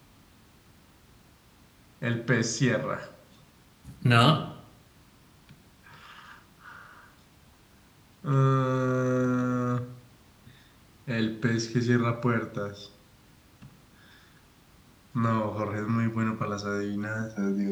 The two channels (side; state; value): both; identical; correlation 1.00